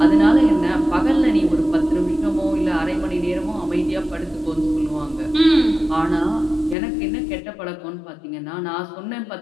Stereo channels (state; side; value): drops out; right; at 6.8 s